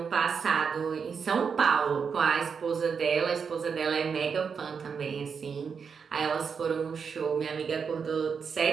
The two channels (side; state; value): left; quieter; 6.1 dB